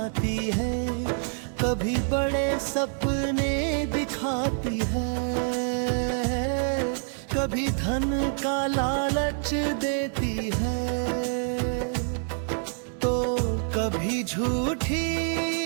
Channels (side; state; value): left; silent; digital silence